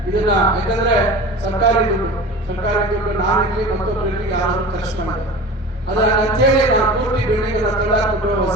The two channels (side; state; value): both; normal; correlation 0.36